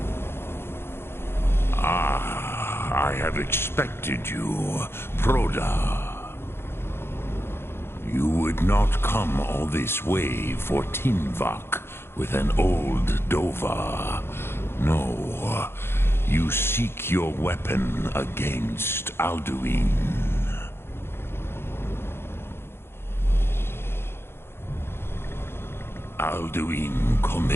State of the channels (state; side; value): late; right; 0.11 ms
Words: Ah, I have expected you, Proda. You would not come all this way for Tinvak with an old Dova. No, you seek your weapon against Alduin. Alduin